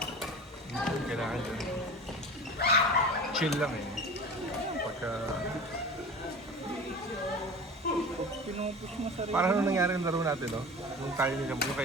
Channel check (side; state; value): both; normal; correlation 0.35